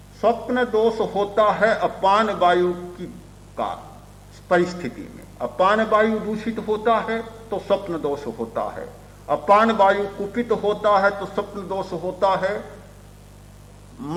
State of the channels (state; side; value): identical; both; correlation 1.00